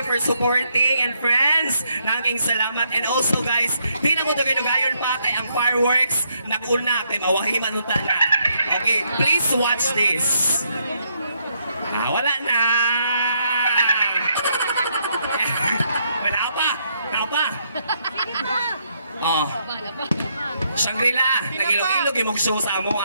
for supporting. And friends, nanging salamat. And also guys, di na mo dugayon pa kay ang fireworks nag-una kay mawahiman nung na. Okay, please watch this. Wala na. Naupa. Oh. Shangri-La, nag-ilog-ilog yung mag-show sa amo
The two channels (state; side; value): inverted; both; correlation -0.74